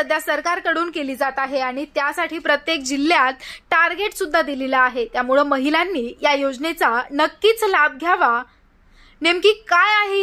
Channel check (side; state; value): both; identical; correlation 1.00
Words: सरकारकडून केली जात आहे आणि त्यासाठी प्रत्येक जिल्ह्यात टार्गेट सुद्धा दिलेलं आहे। त्यामुळे महिलांनी या योजनेचा नक्कीच लाभ घ्यावा। नेमकी काय आहे